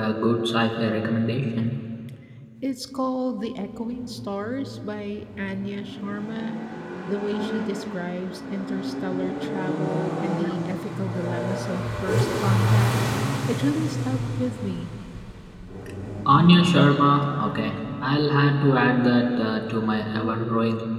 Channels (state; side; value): identical; both; correlation 1.00